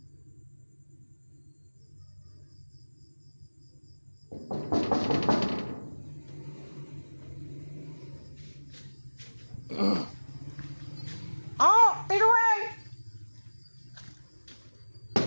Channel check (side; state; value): both; inverted; correlation -1.00